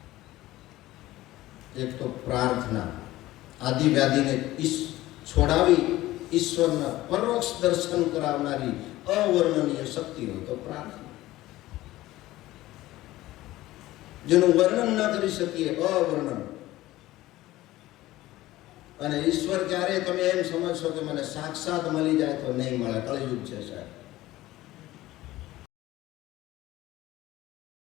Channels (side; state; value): right; quieter; 16.6 dB